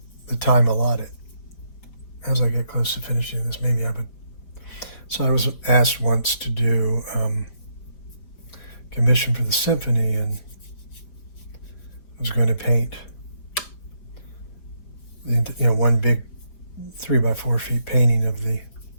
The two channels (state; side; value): late; right; 5.0 ms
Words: time allotted. As I get close to finishing this, maybe I would. So I was asked once to do commission for the symphony, and I was going to paint one big 3x4 feet painting of the